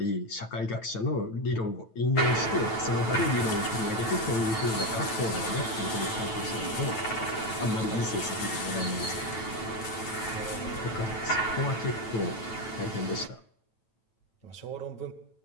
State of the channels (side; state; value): right; late; 9.1 ms